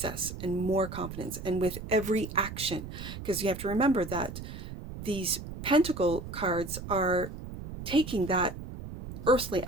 and more confidence. And with every action, because you have to remember that these Pentacle cards are taking that earthly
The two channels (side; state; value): right; noise; rumble, 10 dB below the sound